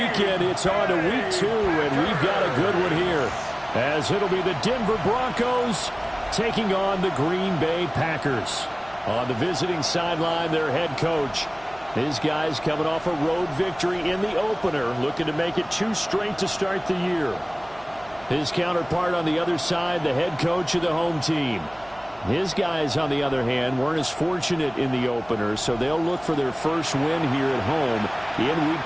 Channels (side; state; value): right; noise; hum, 25 dB below the sound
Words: it's on to week 2, and we've got a good one here, as it'll be the Denver Broncos taking on the Green Bay Packers. On the visiting sideline, their head coach. His guys coming off a road victory in the opener, looking to make it 2 straight to start the year. His counterpart on the other side, the head coach of the home team. His guys, on the other hand, weren't as fortunate in the opener, so they'll look for their first win here at home in week